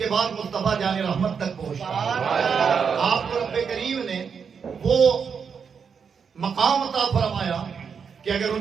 بعد مصطفیٰ جان رحمت تک پہنچتا ہے۔ آپ کو رب کریم نے وہ مقام عطا فرمایا کہ اگر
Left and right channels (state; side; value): quieter; left; 6.4 dB